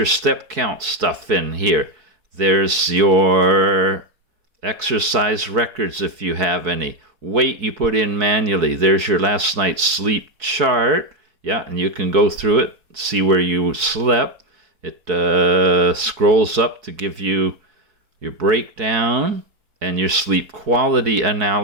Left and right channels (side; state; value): left; late; 4.7 ms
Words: step count stuff in here. There's your exercise records if you have any. Weight you put in manually. There's your last night's sleep chart. Yeah, and you can go through it, see where you slept. It scrolls up to give you your breakdown and your sleep quality